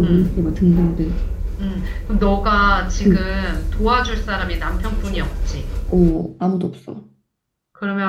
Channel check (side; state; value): both; identical; correlation 1.00